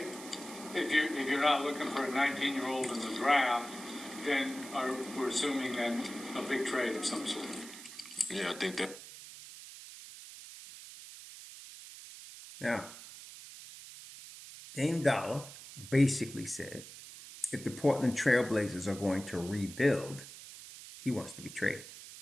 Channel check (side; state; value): right; noise; hiss, 14 dB below the sound